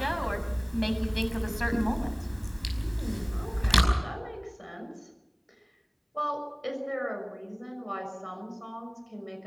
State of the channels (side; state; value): both; identical; correlation 1.00